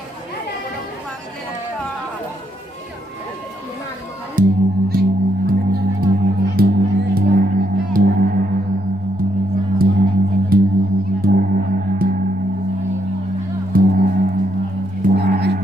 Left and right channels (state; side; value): normal; both; correlation 0.76